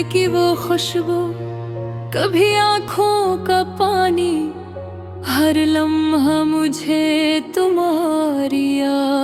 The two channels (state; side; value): identical; both; correlation 1.00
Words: की वो खुशबू, कभी आँखों का पानी, हर लम्हा मुझे तुम्हारी